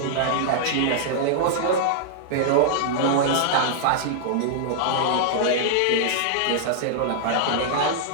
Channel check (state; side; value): different; both; correlation -0.01